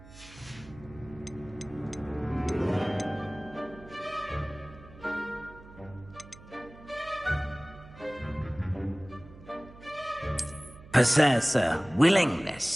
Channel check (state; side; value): noise; right; hum, 19 dB below the sound